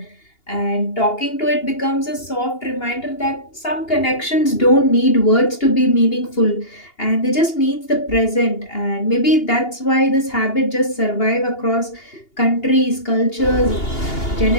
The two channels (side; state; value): right; late; 2.8 ms